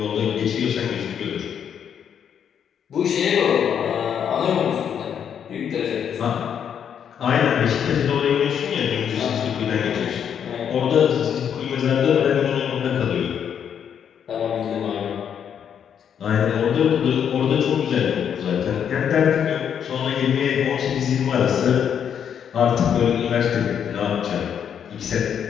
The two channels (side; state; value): right; quieter; 8.3 dB